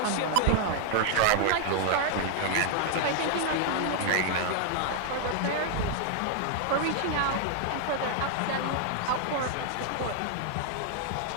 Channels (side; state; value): both; different; correlation 0.00